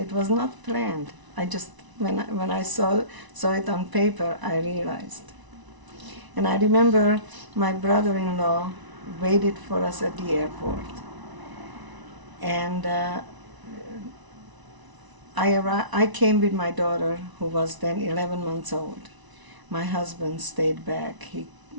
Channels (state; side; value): late; left; 1.0 ms